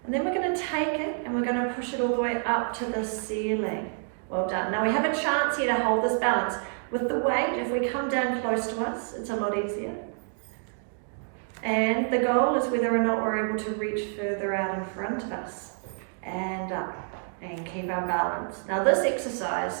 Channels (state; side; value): silent; left; 58 dB below the other